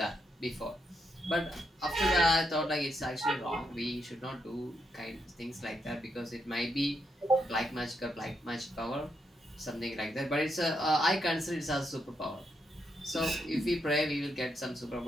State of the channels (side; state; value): both; normal; correlation 0.80